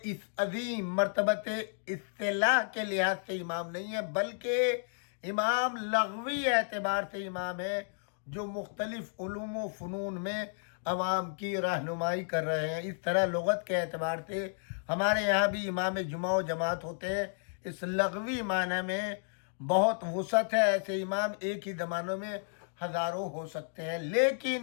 اس عظیم مرتبت اصطلاح کے لحاظ سے امام نہیں ہے، بلکہ امام لغوی اعتبار سے امام ہے، جو مختلف علوم و فنون میں عوام کی رہنمائی کر رہے ہیں۔ اس طرح لغت کے اعتبار سے ہمارے یہاں بھی امام جمعہ و جماعت ہوتے ہیں، اس لغوی معنی میں بہت وسعت ہے، ایسے امام ایک ہی زمانوں میں ہزاروں ہو سکتے ہیں،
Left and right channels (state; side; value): silent; right; digital silence